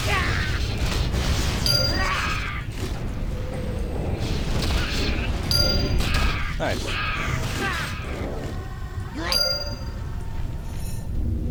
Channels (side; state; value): both; identical; correlation 1.00